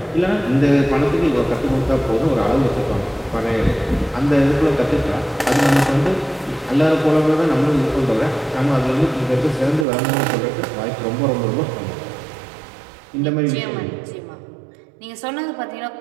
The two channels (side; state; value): left; drops out; at 9.9 s